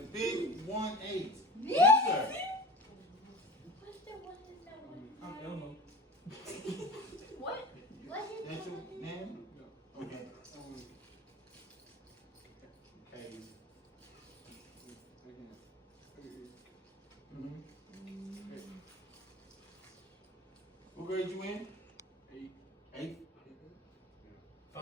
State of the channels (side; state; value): both; normal; correlation 0.35